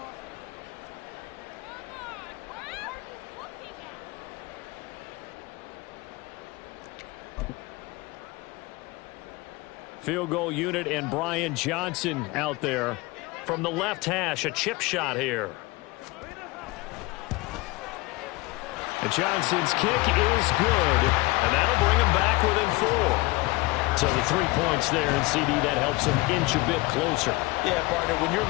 Field goal unit and Brian Johnson out there. From the left hash, a chip shot here. And Johnson's kick is good, and that'll bring him back within 4. So the 3 points there, and CD, that helps him inch a bit closer. Yeah, partner, when you're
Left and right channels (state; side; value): quieter; right; 22.6 dB